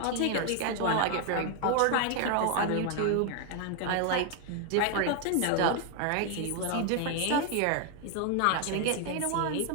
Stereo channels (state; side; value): different; both; correlation 0.00